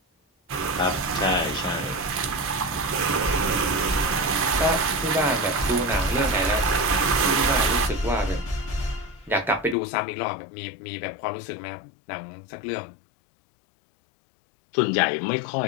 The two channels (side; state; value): right; drops out; at 9.8 s